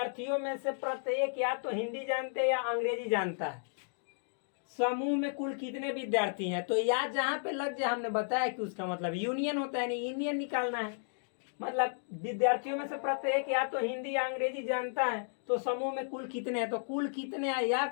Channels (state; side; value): silent; right; digital silence